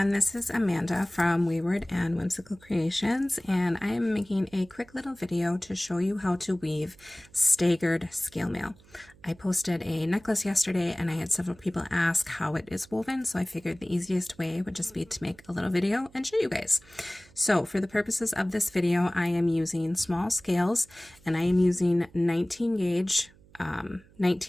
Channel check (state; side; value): noise; right; hum, 26 dB below the sound